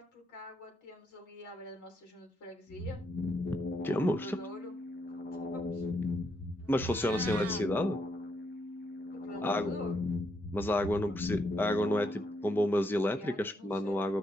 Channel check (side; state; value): both; normal; correlation 0.77